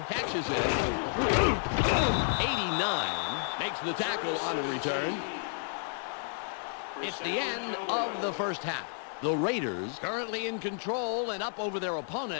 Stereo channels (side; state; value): right; silent; 57 dB below the other